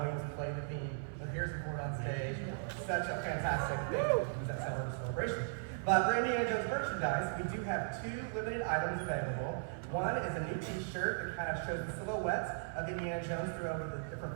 play the theme with Harrison Ford on stage. Such a fantastic thing. It was that celebration. But for Indiana Jones merchandise, we do have 2 limited items available. One is a new t-shirt that kind of shows the silhouettes of Indiana Jones throughout the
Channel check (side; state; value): left; silent; 53 dB below the other